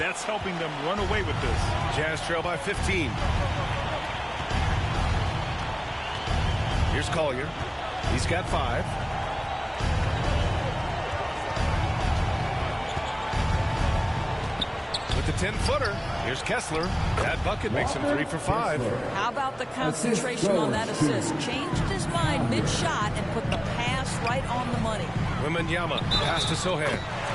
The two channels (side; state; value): both; identical; correlation 1.00